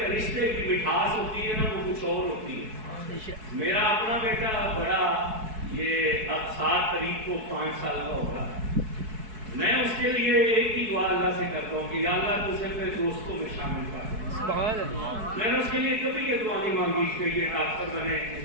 رشتے کی مٹھاس ہوتی ہے نا وہ کچھ اور ہوتی ہے۔ میرا اپنا بیٹا بڑا، یہ اب 7 تاریخ کو 5 سال کا ہوگا، میں اس کے لیے ایک ہی دعا اللہ سے کرتا ہوں کہ یا اللہ تو اسے اپنے دوستوں میں شامل کر۔ میں نے اس کے لیے کبھی یہ دعا نہیں مانگی کہ یہ ڈاکٹر بنے،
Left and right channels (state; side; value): late; left; 4.6 ms